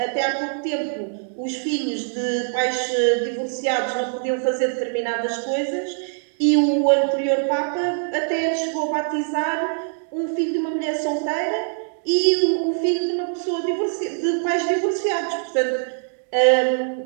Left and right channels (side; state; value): left; silent; digital silence